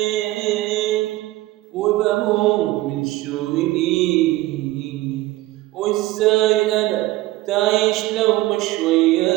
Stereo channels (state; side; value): quieter; left; 17.8 dB